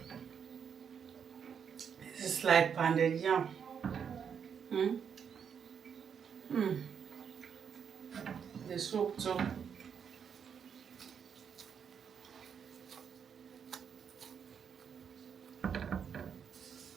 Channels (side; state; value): left; quieter; 7.3 dB